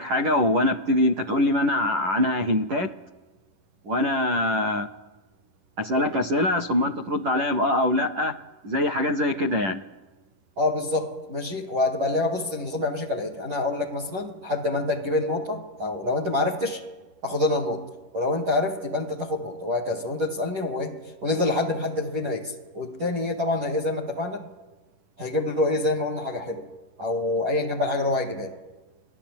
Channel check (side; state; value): left; late; 11 ms